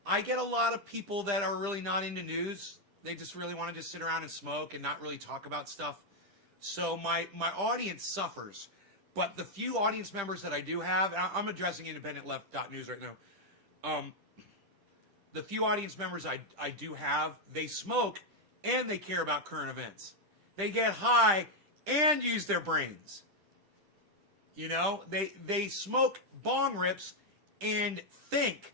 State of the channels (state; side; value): late; left; 10 ms